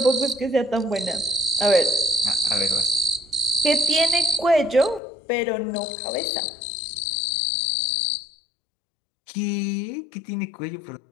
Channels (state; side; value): drops out; right; at 5.0 s